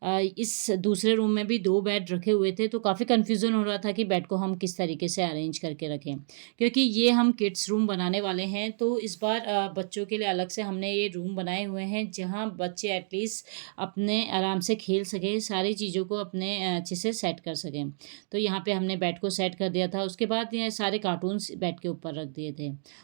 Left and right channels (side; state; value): left; silent; digital silence